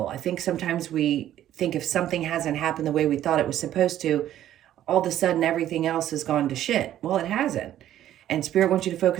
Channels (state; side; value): quieter; left; 12.1 dB